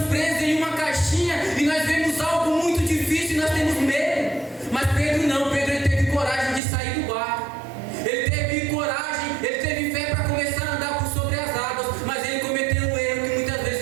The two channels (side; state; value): left; drops out; at 6.6 s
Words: presos em uma caixinha e nós vemos algo muito difícil e nós temos medo. Mas Pedro não. Pedro, ele teve coragem de sair do barco. Ele teve coragem, ele teve fé para começar a andar por sobre as águas. Mas ele cometeu um erro que muitas